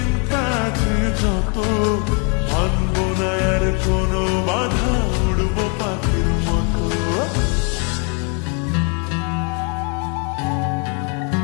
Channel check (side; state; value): right; quieter; 36.6 dB